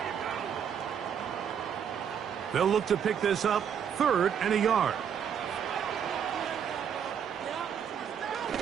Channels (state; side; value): quieter; left; 8.1 dB